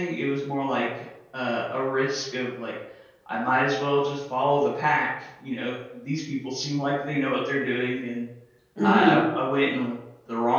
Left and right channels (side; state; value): both; identical; correlation 1.00